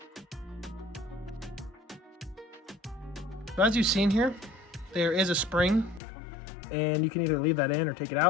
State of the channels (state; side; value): drops out; right; at 6.0 s